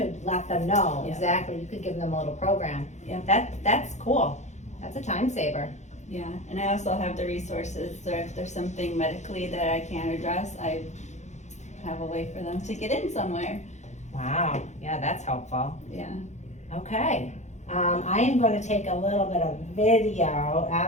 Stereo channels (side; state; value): right; late; 0.34 ms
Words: let them know Yeah. exactly, you could give them a little program. Yeah. That's cool, that's a time saver. Yeah, and I also have the resources, so if there's something medically that I can't address, I have a way for them to get in somewhere. Wow, yeah, that's helpful. Yeah. Okay, I am gonna take a little bit of video